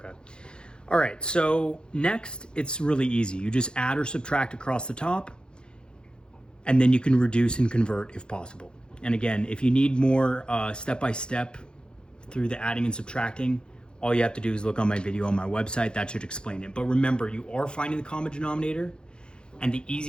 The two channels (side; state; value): right; late; 0.050 ms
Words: All right, so next, it's really easy. You just add or subtract across the top, and then you can reduce and convert if possible. And again, if you need more step-by-step through the adding and subtracting, all you have to do is look on my video on my website. That should explain it. But remember, you are finding the common denominator, and the